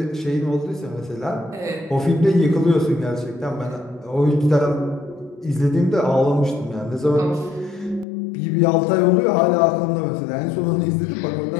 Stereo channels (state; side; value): drops out; right; at 8.1 s